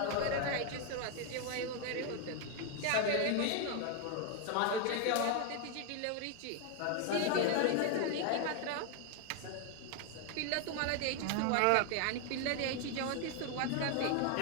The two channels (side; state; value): both; different; correlation 0.01